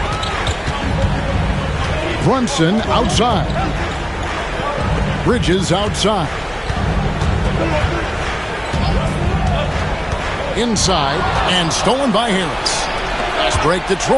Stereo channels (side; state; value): both; identical; correlation 1.00